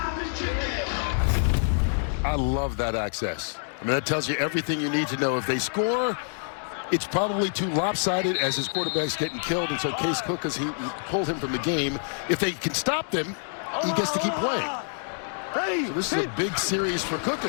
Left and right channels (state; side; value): silent; right; digital silence